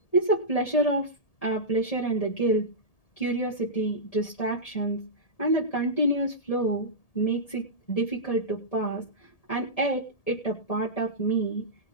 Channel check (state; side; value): late; right; 1.8 ms